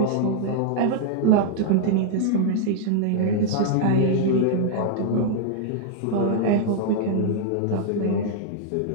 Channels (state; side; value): different; both; correlation 0.00